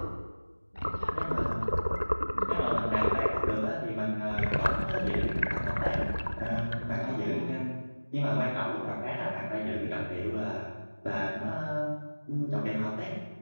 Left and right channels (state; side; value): inverted; both; correlation -1.00